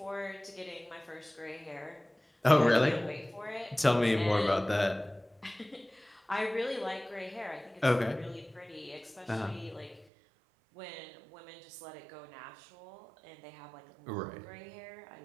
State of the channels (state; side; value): drops out; left; at 10.1 s